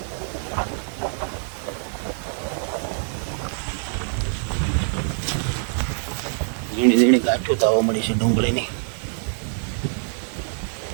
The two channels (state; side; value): silent; left; 58 dB below the other